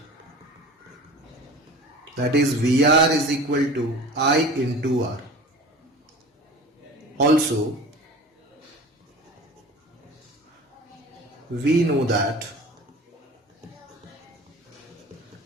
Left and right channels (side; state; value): both; normal; correlation 0.39